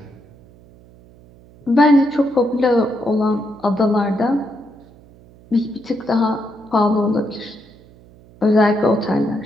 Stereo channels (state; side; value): noise; right; hum, 25 dB below the sound